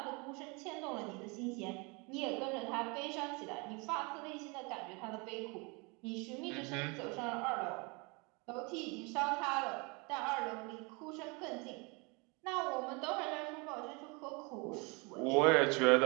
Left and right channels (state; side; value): quieter; left; 29.6 dB